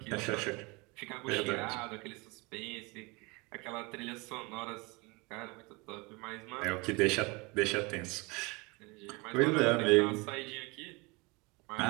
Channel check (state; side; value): quieter; left; 26.7 dB